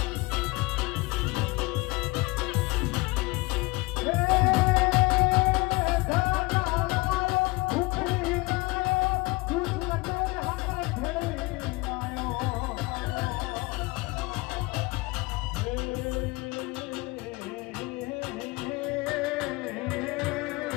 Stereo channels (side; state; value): right; quieter; 23.8 dB